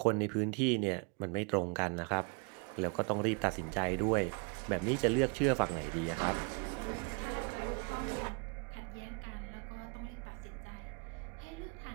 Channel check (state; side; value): quieter; left; 34.4 dB